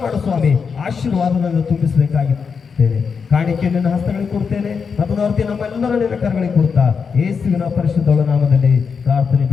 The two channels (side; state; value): right; quieter; 5.8 dB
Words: ಮಾಡು ಸ್ವಾಮಿ. ಆಶೀರ್ವಾದವನ್ನು ತುಂಬಿಸಬೇಕಾಗಿದ್ದೇನೆ. ಕಾಣಿಕೆ ನಿನ್ನ ಹಸ್ತಗಳಿಗೆ ಕೊಡ್ತೇನೆ ಮತ್ತು ನಮ್ಮೆಲ್ಲರೂ ನಿನ್ನ ಕರಗಳಿಗೆ ಕೊಡ್ತಾ ಯೇಸುವಿನ ಪರಿಶುದ್ಧ ನಾಮದಲ್ಲಿ ಪ್ರಾರ್ಥನೆ